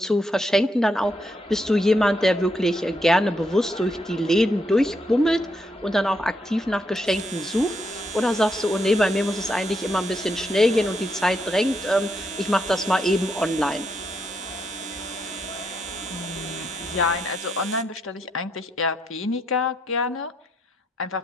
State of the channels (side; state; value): both; normal; correlation 0.78